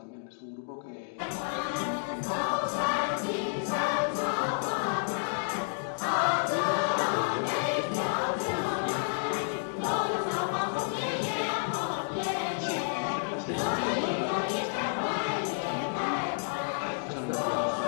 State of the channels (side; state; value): right; silent; digital silence